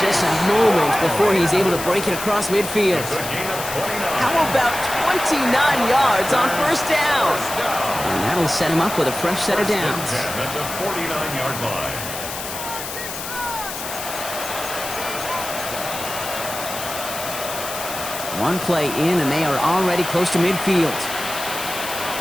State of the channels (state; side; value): noise; left; hiss, 8 dB below the sound